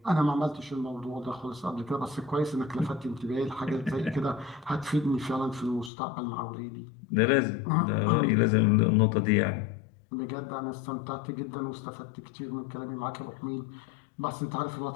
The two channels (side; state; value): right; drops out; at 5.9 s